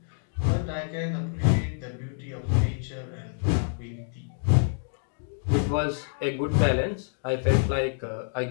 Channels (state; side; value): silent; right; digital silence